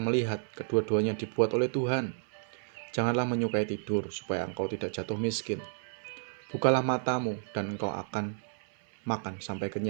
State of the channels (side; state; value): left; silent; 57 dB below the other